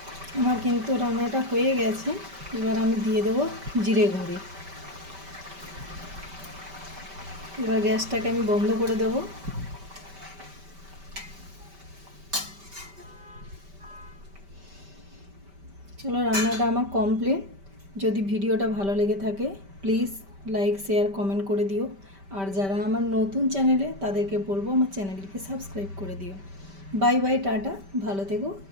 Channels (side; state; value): left; late; 5.1 ms